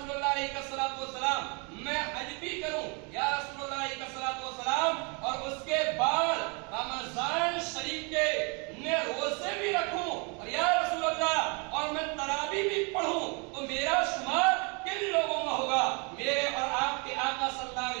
اللہ علیہ الصلوۃ والسلام میں حج بھی کروں, یا رسول اللہ علیہ الصلوۃ والسلام, اور اس کے بعد رمضان شریف کے میں روزے بھی رکھوں, اور یا رسول اللہ اور میں تراویح بھی پڑھوں, تو میرا شمار کن لوگوں میں ہوگا؟ میرے اور آپ کے آقا صلی اللہ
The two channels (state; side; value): quieter; left; 33.0 dB